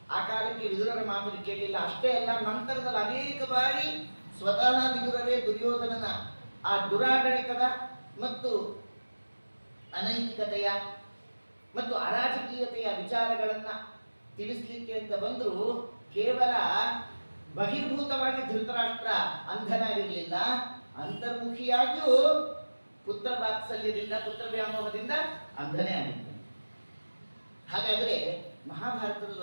ಆ ಕಾಲಕ್ಕೆ ವಿದುರರ ಮಾತನ್ನು ಕೇಳಲಿಲ್ಲ. ಅಷ್ಟೇ ಅಲ್ಲ, ನಂತರದಲ್ಲಿ ಅನೇಕ ಬಾರಿ ಸ್ವತಃ ವಿದುರರೇ ದುರ್ಯೋಧನನ ಆ ದುರಾಡಳಿತದ ಮತ್ತು ಅನೈತಿಕತೆಯ ಮತ್ತು ಅರಾಜಕೀಯತೆಯ ವಿಚಾರಗಳನ್ನ ತಿಳಿಸ್ಲಿಕ್ಕೆ ಅಂತ ಬಂದರೂ ಕೇವಲ ಬಹಿರ್ಭೂತವಾಗಿ ಧೃತರಾಷ್ಟ್ರ ಅಂಧನಾಗಿರಲಿಲ್ಲ, ಅಂತರ್ಮುಖಿಯಾಗಿಯೂ ಪುತ್ರ ವಾತ್ಸಲ್ಯದಿಂದ ಪುತ್ರ ವ್ಯಾಮೋಹದಿಂದ ಅಂಧನೇ ಆಗಿದ್ದಾನೆ. ಹಾಗಾದ್ರೆ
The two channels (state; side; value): inverted; both; correlation -1.00